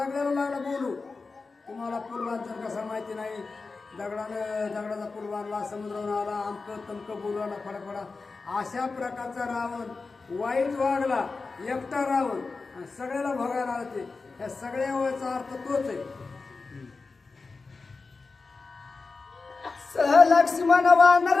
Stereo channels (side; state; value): right; quieter; 4.1 dB